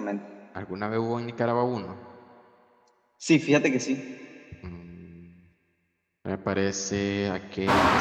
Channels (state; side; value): identical; both; correlation 1.00